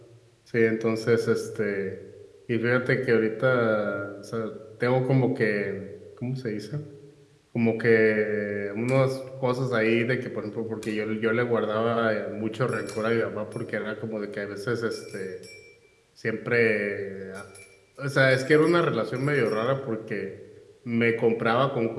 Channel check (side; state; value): both; identical; correlation 1.00